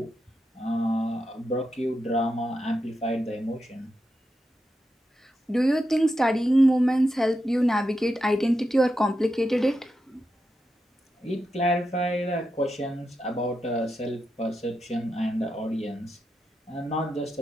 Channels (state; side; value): normal; both; correlation 0.87